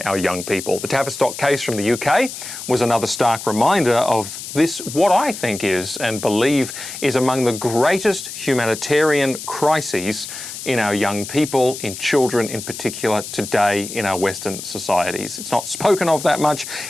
our young people. The Tavistock case from the UK was another stark reminder of this, what I think is and believe is among the greatest humanitarian crises in our young people, in children in particular, today in our Western societies. It's not spoken of that much.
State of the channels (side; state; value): left; noise; hiss, 10 dB below the sound